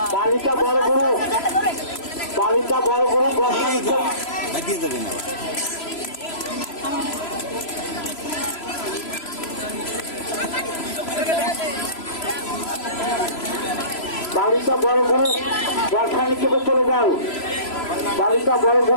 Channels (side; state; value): right; late; 3.0 ms